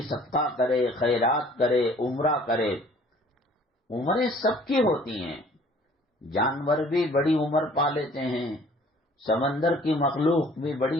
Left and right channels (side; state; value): both; normal; correlation 0.54